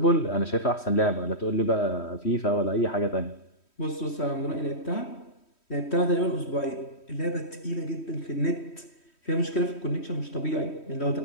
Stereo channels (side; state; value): right; late; 3.1 ms